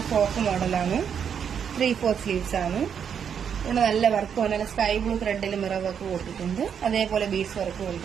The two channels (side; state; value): left; quieter; 7.7 dB